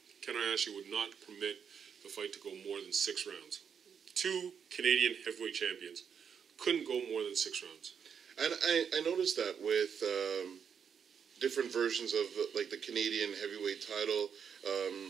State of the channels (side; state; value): left; quieter; 7.2 dB